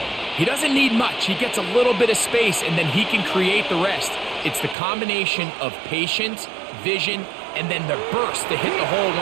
he doesn't need much. He gets a little bit of space, and then he can create the rest. It's the combination of patience, vision, and then the burst to hit the hole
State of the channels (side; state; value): left; drops out; at 4.8 s